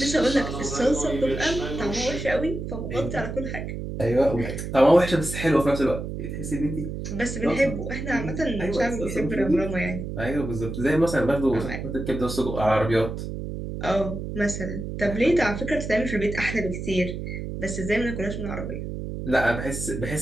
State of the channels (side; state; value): right; noise; hum, 6 dB below the sound